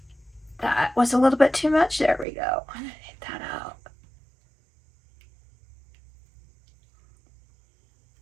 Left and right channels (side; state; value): left; drops out; at 2.2 s